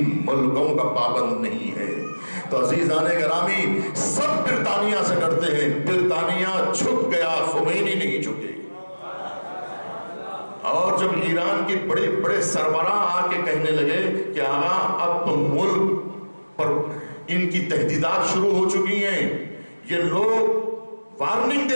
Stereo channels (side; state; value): both; inverted; correlation -1.00